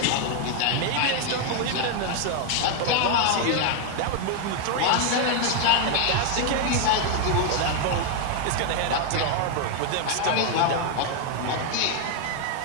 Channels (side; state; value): both; different; correlation 0.00